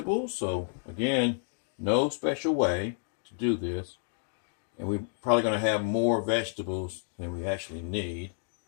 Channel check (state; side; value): silent; right; 58 dB below the other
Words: So again, no special way to do this. And we're probably going to have more vegetables than we actually need.